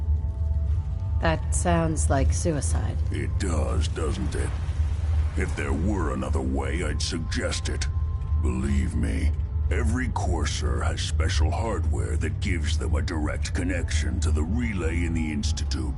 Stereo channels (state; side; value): identical; both; correlation 1.00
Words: That sounds like suicide. It does, doesn't it? If there were another way, I'd suggest it. Believe me, every courser has special hardware that gives them a direct connection to the relay in the